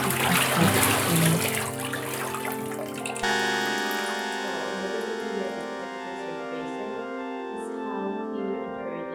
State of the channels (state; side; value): identical; both; correlation 1.00